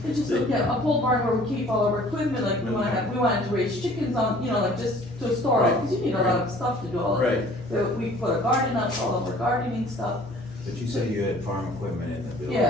It's just, yeah, a pole barn where we keep all of our equipment, like we wanted to raise chickens on, you know, like just to store it, cause you need a lot of stuff to do all of it. Right, So we put a garden up, all of our gardening stuff, But you said you had farm equipment in the building.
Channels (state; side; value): normal; both; correlation 0.52